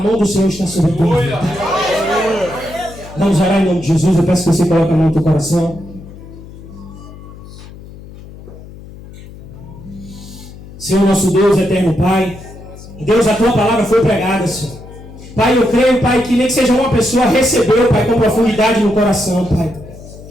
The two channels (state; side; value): noise; left; hum, 17 dB below the sound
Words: do Senhor está sobre a tua vida. Vamos orar em nome de Jesus. Eu peço que você coloque a mão no teu coração. Senhor nosso Deus, eterno Pai, Deus, a tua palavra foi pregada, Senhor. Pai, eu creio, Pai, que nem que seja uma pessoa recebeu, Pai, com profundidade no coração, Pai.